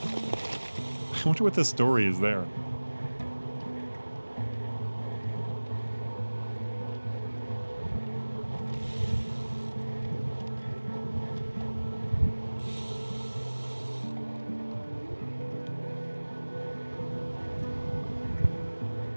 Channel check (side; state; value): both; inverted; correlation -1.00